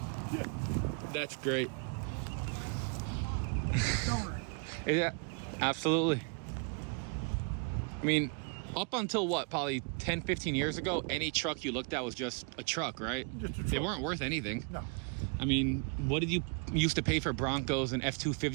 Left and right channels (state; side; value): quieter; left; 37.0 dB